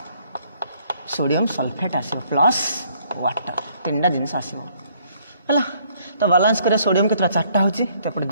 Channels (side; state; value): both; inverted; correlation -0.65